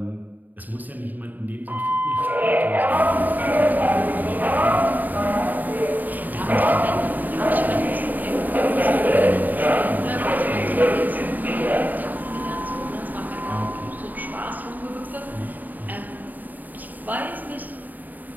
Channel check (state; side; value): late; left; 0.085 ms